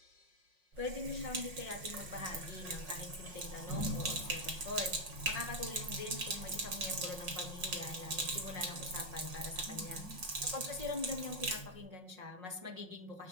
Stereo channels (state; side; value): late; left; 5.5 ms